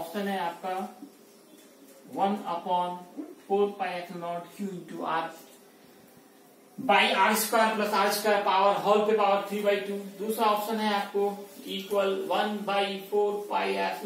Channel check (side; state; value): both; identical; correlation 1.00